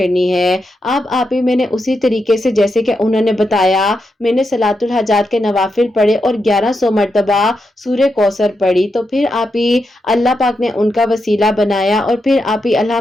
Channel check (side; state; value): both; normal; correlation 0.85